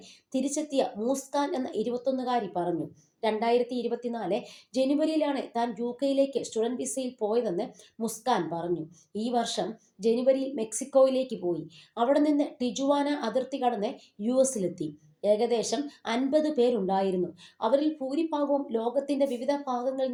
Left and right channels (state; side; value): identical; both; correlation 1.00